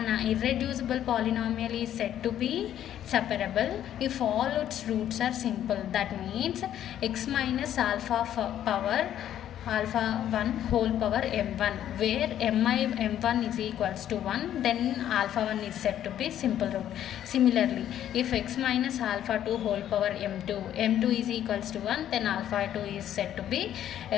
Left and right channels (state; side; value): quieter; right; 11.0 dB